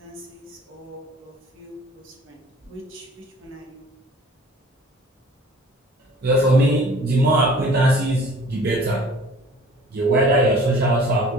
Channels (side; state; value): both; normal; correlation 0.49